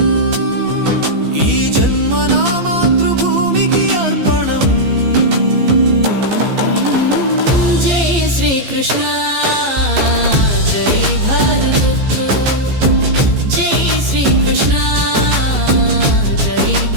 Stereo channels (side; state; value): left; late; 15 ms